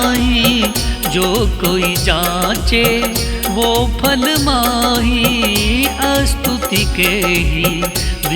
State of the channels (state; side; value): identical; both; correlation 1.00